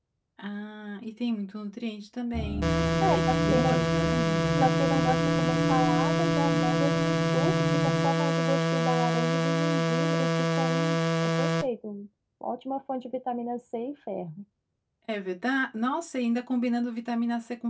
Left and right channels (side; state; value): both; identical; correlation 1.00